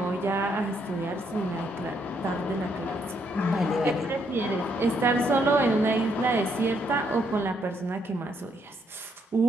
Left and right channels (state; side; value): normal; both; correlation 0.73